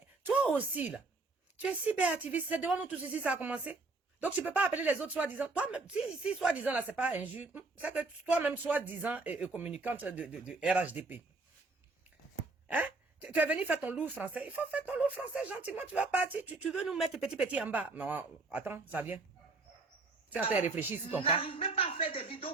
toi aussi là, tu es cyberactiviste, c'est devant nous tous ici ça a commencé. Donc tu ne peux pas appeler les autres soi-disant. Toi-même, si soi-disant là c'est pas injuste, c'est que toi-même soi-disant communicante de RHDP. Hein? Tu es venu faire ton loup français. Il faut faire ton loup français gentiment. Tu vas partir. Tu veux nous mettre petit en bas. Non, attends, ça vient. Tu es en train de réfléchir sur ton cas. N'arrivent même pas à faire des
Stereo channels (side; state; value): left; quieter; 3.6 dB